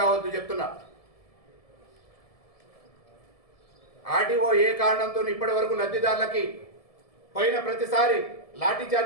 చెప్తున్నా. ఆర్డీఓ ఏ కారణంతో ఇప్పటి వరకు లబ్ధిదారులకి పోయిన ప్రతిసారి లాఠీ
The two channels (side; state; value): right; late; 1.7 ms